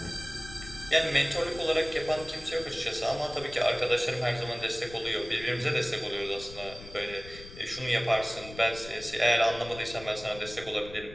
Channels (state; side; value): noise; left; rumble, 15 dB below the sound